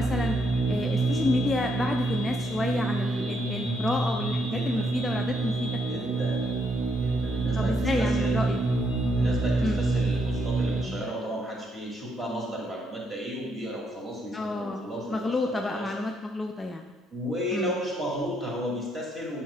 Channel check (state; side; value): normal; both; correlation 0.75